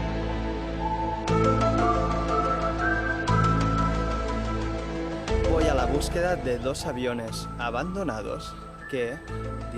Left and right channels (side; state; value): both; identical; correlation 1.00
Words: Voy a la búsqueda de dos aviones abandonados que,